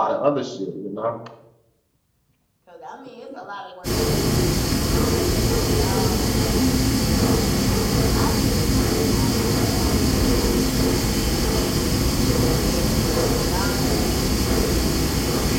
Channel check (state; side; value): identical; both; correlation 1.00